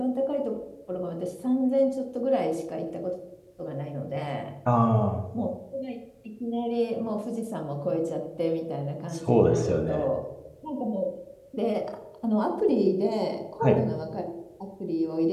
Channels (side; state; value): both; identical; correlation 1.00